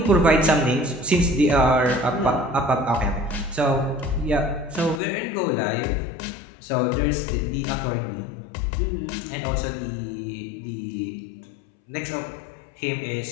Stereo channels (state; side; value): drops out; right; at 5.0 s